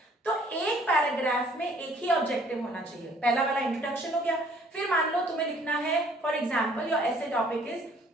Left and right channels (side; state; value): both; normal; correlation 0.58